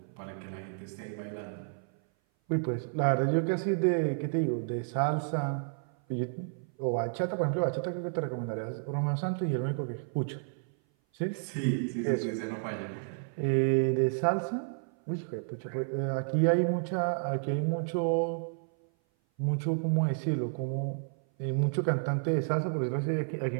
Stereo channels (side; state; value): left; silent; 56 dB below the other